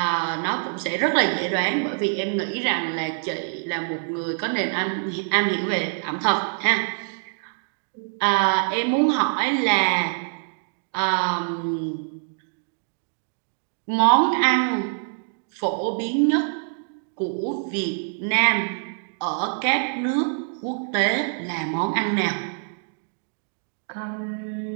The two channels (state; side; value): silent; left; digital silence